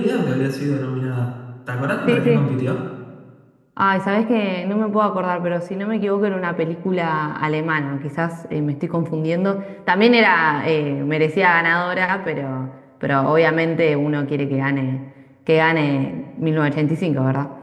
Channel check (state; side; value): identical; both; correlation 1.00